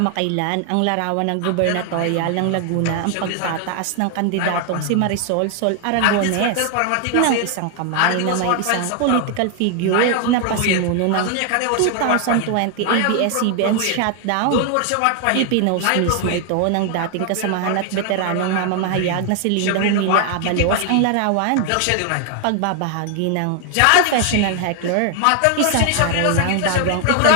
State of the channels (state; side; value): different; both; correlation 0.00